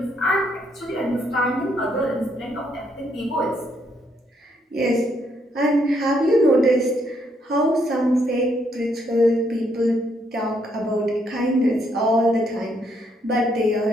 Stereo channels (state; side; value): normal; both; correlation 0.73